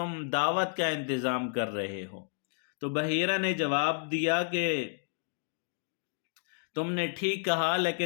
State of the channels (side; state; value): right; silent; digital silence